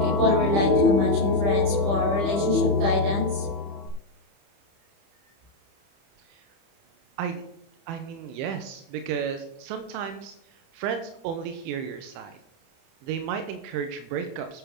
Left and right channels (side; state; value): left; late; 30 ms